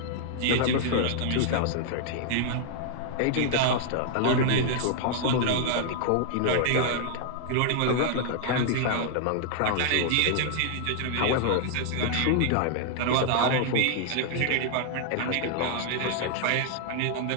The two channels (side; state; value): both; different; correlation -0.01